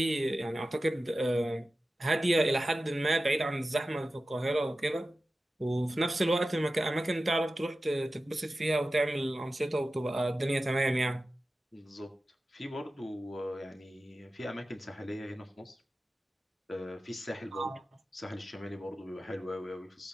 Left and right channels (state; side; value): normal; both; correlation 0.94